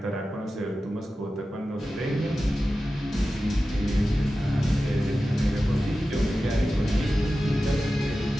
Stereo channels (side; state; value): both; normal; correlation 0.94